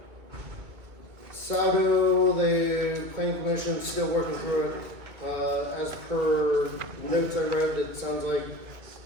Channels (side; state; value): left; late; 2.2 ms